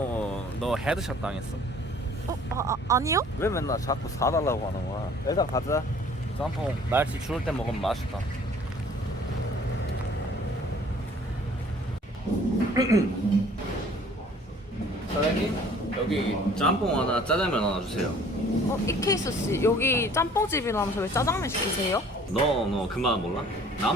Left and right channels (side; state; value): both; normal; correlation 0.53